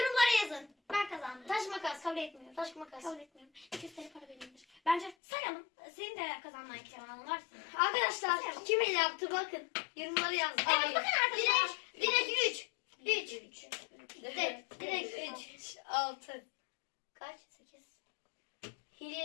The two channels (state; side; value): drops out; right; at 5.2 s